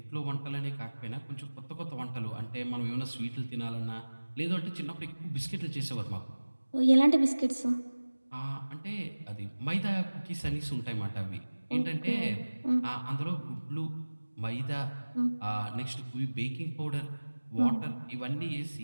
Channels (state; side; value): inverted; both; correlation -1.00